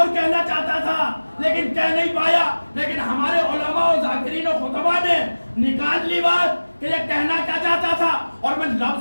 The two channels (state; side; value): inverted; both; correlation -1.00